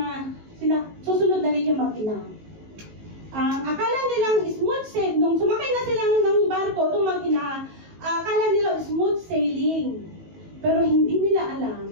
susunod na rin yung mag-ina. Akala nilang smooth sailing, nung sumakay na sila ng barko, itong mag-ina, akala nila smooth sailing. Pero hindi nila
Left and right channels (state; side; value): late; left; 19 ms